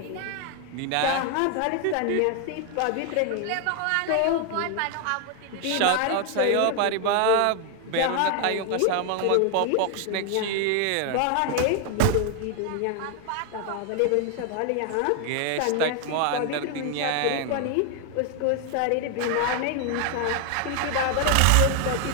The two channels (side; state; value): both; different; correlation 0.01